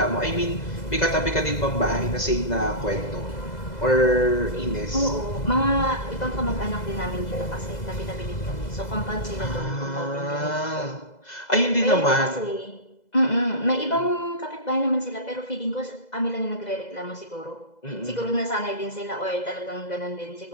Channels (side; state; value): right; late; 2.0 ms